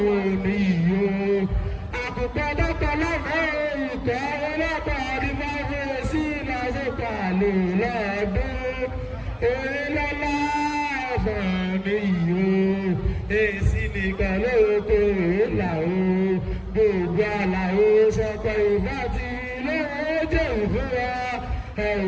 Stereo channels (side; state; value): both; identical; correlation 1.00